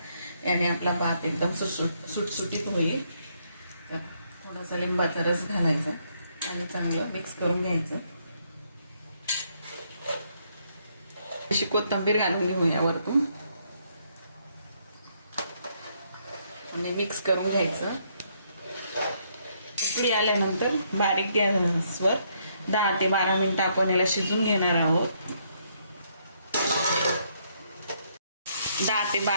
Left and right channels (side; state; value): both; inverted; correlation -0.72